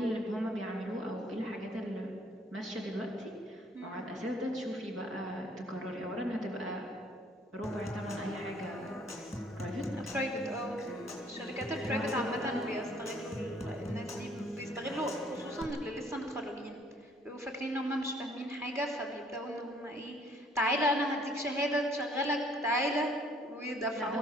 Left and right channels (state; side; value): normal; both; correlation 0.61